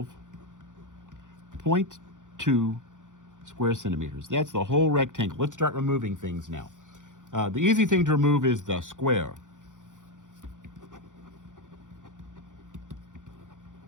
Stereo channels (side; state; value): left; late; 0.87 ms